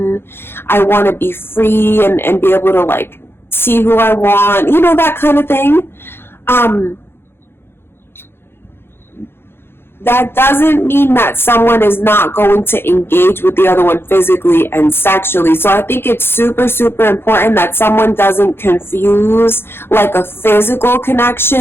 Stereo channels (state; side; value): late; right; 0.11 ms